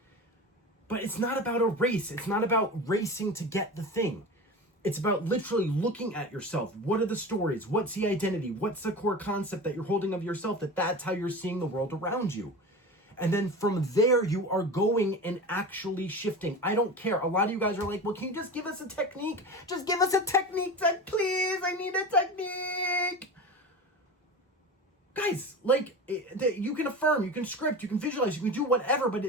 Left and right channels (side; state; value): both; normal; correlation 0.30